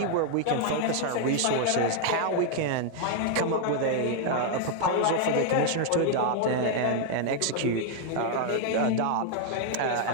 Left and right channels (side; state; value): both; different; correlation 0.00